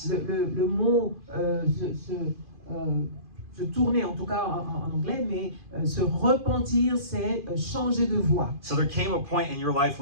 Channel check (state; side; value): late; left; 2.5 ms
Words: le mot se tourner, en tout cas en anglais, mais se repentir, c'est changer de voie. So there came a point in your life